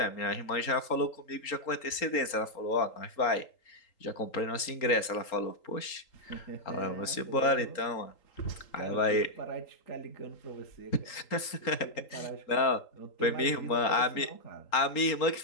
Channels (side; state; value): right; late; 3.8 ms